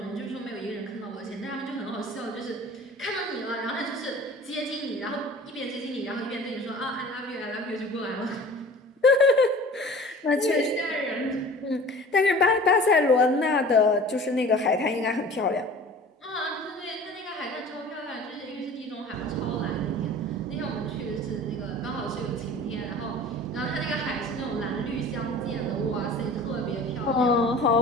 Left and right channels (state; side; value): normal; both; correlation 0.43